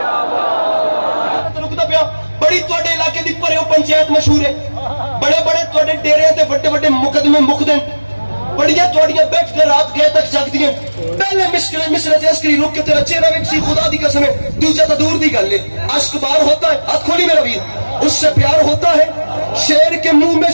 بڑی توڑے علاقے دی پرے پنچایت مشہور ہے بڑے بڑے توڑے ڈیرے تے بڑے بڑے مقدمے مقدم بڑیاں توڑیاں بیٹھ کے رات گئے تک جگتی ہیں پہلے مصر عسکری رک کے تیرا چہرہ بھی کسی خدا دی قسم ہے دوسرا تو دور دی گل ہے عشق بار ہوتا ہے ہاتھ کھولی میرا ویر اس سے پیار ہوتا ہے شیر کے منہ میں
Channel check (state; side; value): inverted; both; correlation -1.00